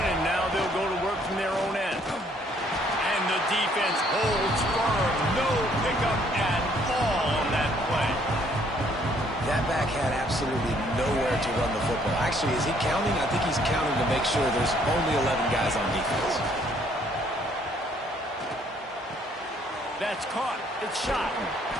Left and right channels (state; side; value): normal; both; correlation 0.64